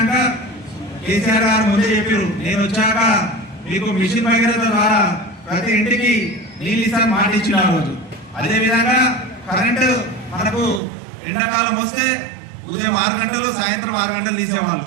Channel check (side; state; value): left; drops out; at 10.8 s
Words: కేసీఆర్ గారు ముందే చెప్పారు, నేను వచ్చాక మీకు మిషన్ భగీరథ ద్వారా ప్రతి ఇంటికి నీళ్ళు ఇస్తాను మాట ఇచ్చిన ఆ రోజు. అదేవిధంగా కరెంటు మనకు ఎండాకాలం వస్తే ఉదయం 6 గంటలు సాయంత్రం 6 గంటలు తీసేవాళ్ళు.